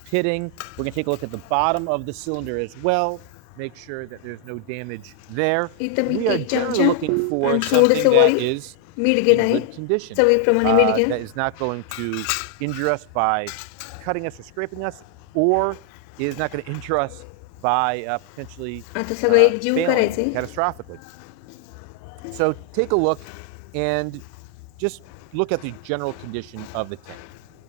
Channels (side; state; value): both; different; correlation 0.00